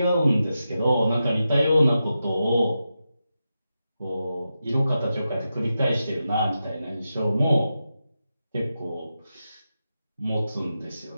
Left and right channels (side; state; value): both; inverted; correlation -0.89